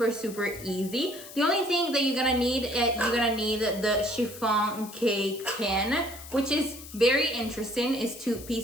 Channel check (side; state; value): left; noise; hiss, 15 dB below the sound